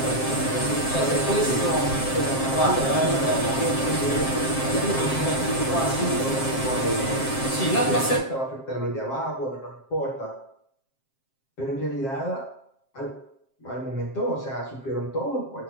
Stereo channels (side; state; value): right; late; 7.5 ms